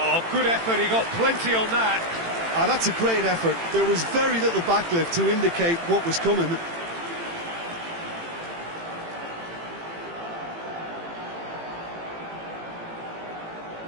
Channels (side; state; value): left; late; 18 ms